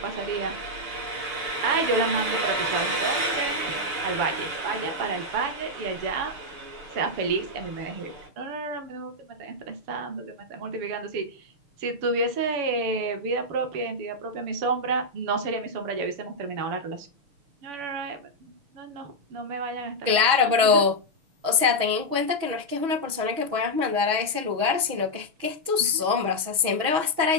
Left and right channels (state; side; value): late; left; 6.2 ms